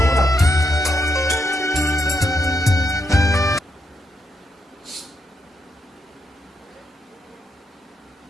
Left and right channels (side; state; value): both; normal; correlation 0.81